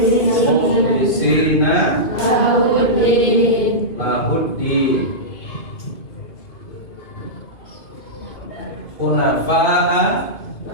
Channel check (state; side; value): late; right; 2.2 ms